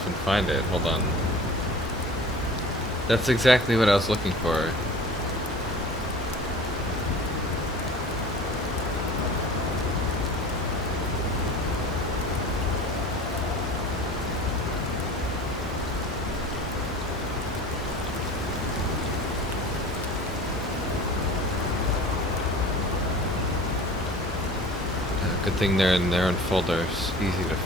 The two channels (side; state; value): both; normal; correlation 0.41